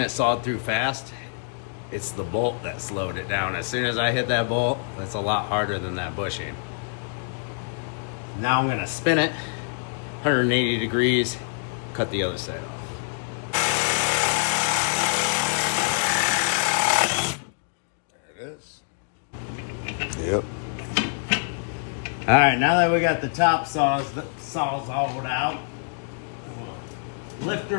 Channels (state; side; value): silent; right; digital silence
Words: sawed through fast. It's the bolt that slowed it down. As soon as I hit that bolt, it's a lot harder than that bushing. Now I'm gonna spin it 180 degrees, cut the other side off. There it is. Yep. All right, now that we got the top saws all out, we'll lift